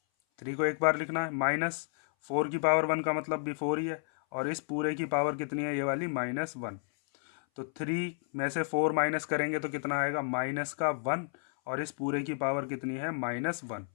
3 को एक बार लिखना है। -4 की पावर 1 का मतलब भी 4 ही है, और इस पूरे की पावर कितनी है ये वाली -1। तो 3 में से 4 माइनस करेंगे तो कितना आएगा माइनस का 1, और इस पूरे की पावर कितनी है -1।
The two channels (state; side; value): silent; right; 57 dB below the other